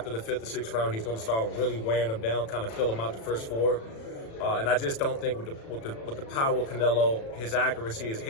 the 5th or 6th round, he's going to start really wearing them down, kind of fill them out the first 4. And I just don't think with the power of Canelo, his accuracy, his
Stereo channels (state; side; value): late; right; 36 ms